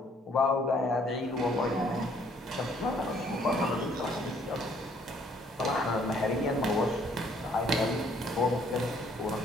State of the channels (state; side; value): normal; both; correlation 0.63